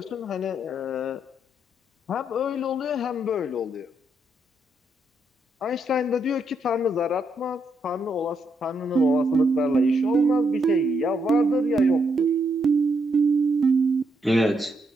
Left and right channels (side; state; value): both; normal; correlation 0.78